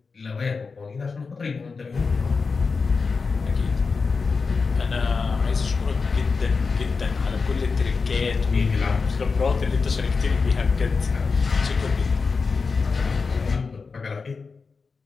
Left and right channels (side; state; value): right; quieter; 4.7 dB